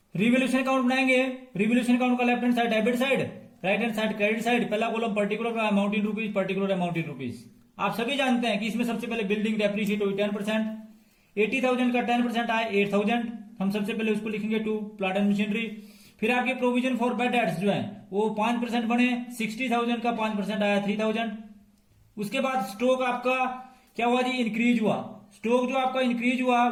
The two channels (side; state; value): both; identical; correlation 1.00